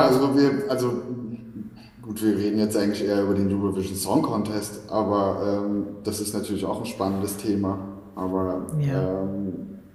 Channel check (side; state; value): both; identical; correlation 1.00